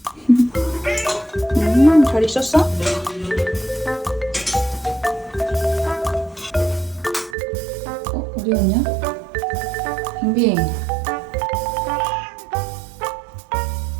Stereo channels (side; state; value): left; drops out; at 7.4 s